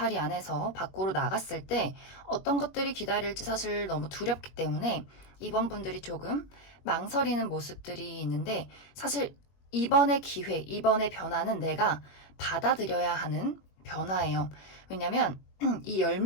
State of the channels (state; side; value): late; right; 21 ms